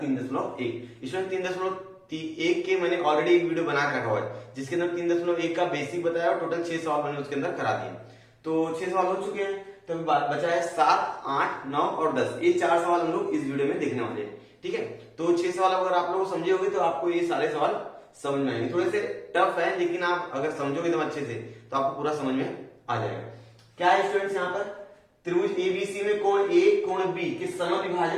3.1। इसमें 3.1 के मैंने ऑलरेडी एक वीडियो बना रखा हुआ है जिसके अंदर 3.1 का बेसिक बताया और टोटल 6 सवाल मैंने उसके अंदर करा दिए। तो 6 सवाल हो चुके हैं, तो बचा है 7, 8, 9 और 10। ये 4 सवाल हम लोग इस वीडियो में देखने वाले हैं, ठीक है। तो 6 सवाल अगर आप लोग समझे होंगे तो आपको ये सारे सवाल समझ में आएंगे। थोड़े से टफ है लेकिन आप अगर समझोगे एकदम अच्छे से तो आपको पूरा समझ में आ जाएगा। क्या है स्टूडेंट्स, यहाँ पर त्रिभुज एबीसी में कोण ए कोण बी के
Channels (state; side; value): identical; both; correlation 1.00